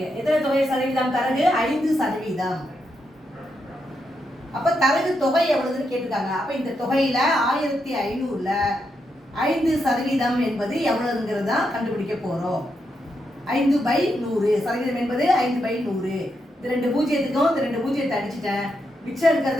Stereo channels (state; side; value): normal; both; correlation 0.83